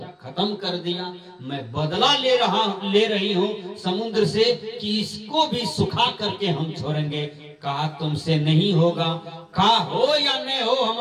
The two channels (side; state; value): both; identical; correlation 1.00